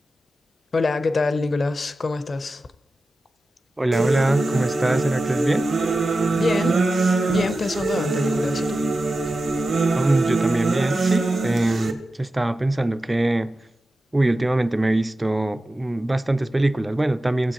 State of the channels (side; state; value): both; normal; correlation 0.93